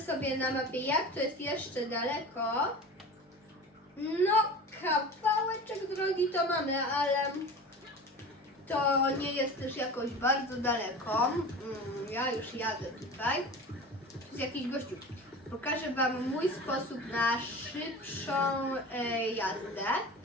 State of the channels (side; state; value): both; normal; correlation 0.34